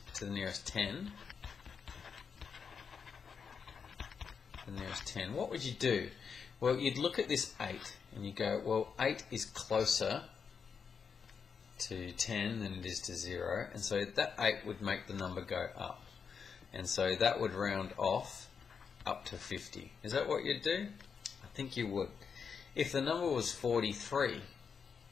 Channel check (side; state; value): right; quieter; 6.2 dB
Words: 10, what would you do? Well, you'd look at this 8 and you go, well, 8 is closer to 10 than it is to 0, and so that 8 would make the number go up, and so that would round off up to 50. Is that what you'd do? I think you would. If the number was 43,